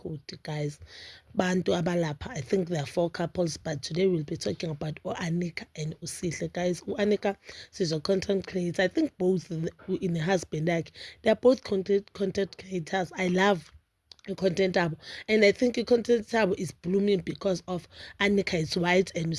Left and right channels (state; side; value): identical; both; correlation 1.00